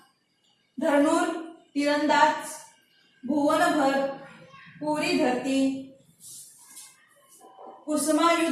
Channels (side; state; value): both; identical; correlation 1.00